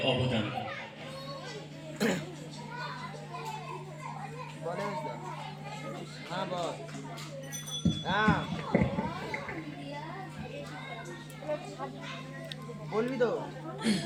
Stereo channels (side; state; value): both; identical; correlation 1.00